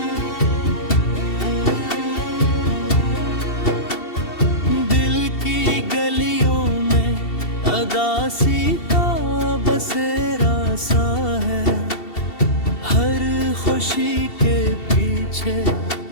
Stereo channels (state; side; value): late; right; 2.7 ms